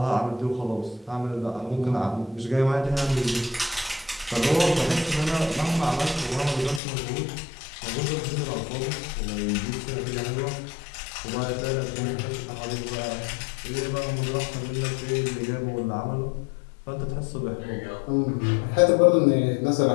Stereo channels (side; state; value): right; drops out; at 6.8 s